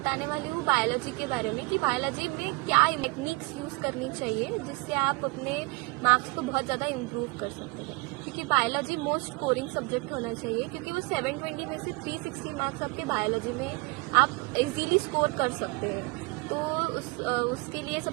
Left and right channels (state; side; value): quieter; left; 25.6 dB